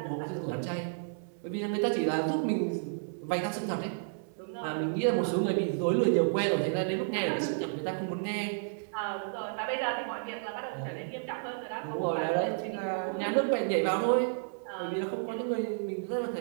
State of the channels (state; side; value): silent; left; 57 dB below the other